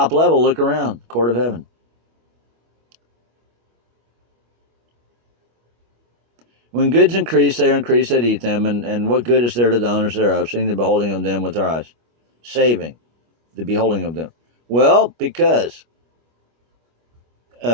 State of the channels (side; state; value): left; late; 25 ms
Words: level, look around, court of heaven. When goods increase, they are increased that eat them, and what good is there to the owners thereof, seeing the beholding of them with their eyes? Saving the beholding of them. Well, because